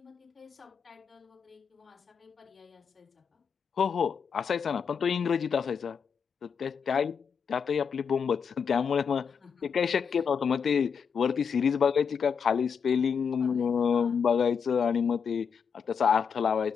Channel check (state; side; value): quieter; right; 6.5 dB